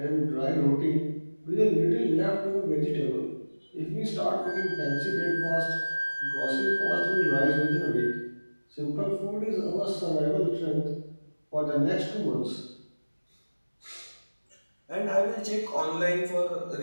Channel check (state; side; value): inverted; both; correlation -1.00